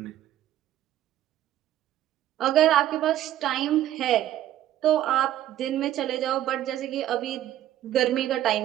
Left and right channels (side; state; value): left; quieter; 12.7 dB